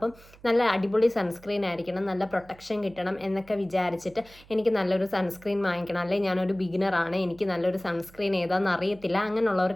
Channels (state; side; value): noise; right; hum, 24 dB below the sound